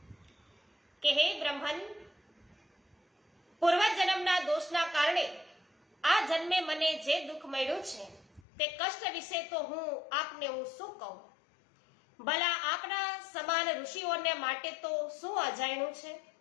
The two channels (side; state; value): right; drops out; at 8.4 s